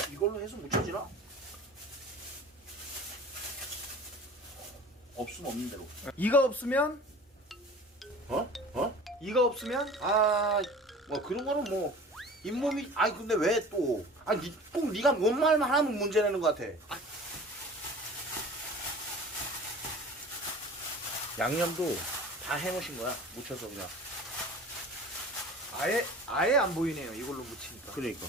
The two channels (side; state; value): both; normal; correlation 0.41